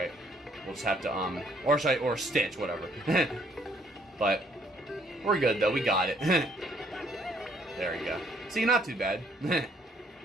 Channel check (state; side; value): normal; both; correlation 0.65